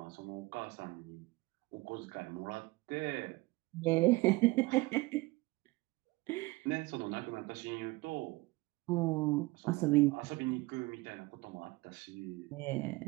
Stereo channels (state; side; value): quieter; left; 22.0 dB